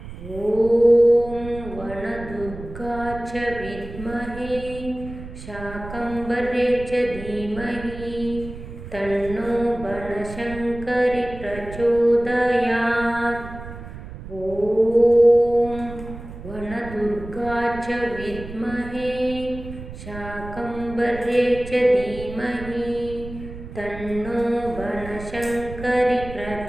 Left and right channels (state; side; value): noise; right; rumble, 12 dB below the sound